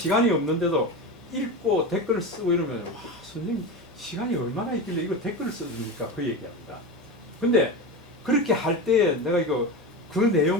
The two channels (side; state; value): both; normal; correlation 0.22